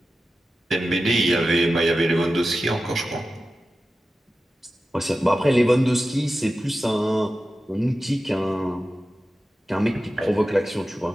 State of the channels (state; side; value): normal; both; correlation 0.93